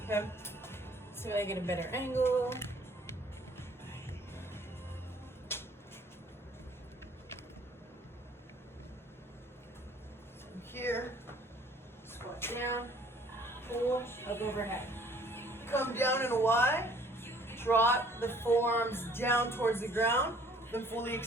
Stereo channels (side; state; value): both; normal; correlation 0.56